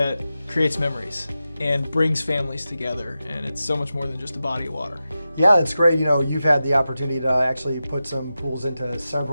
creates memories and brings families together. And it's so much more than just a body of water. Yeah, it's great. You've had the opportunity to actually put some pools into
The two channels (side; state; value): both; inverted; correlation -0.92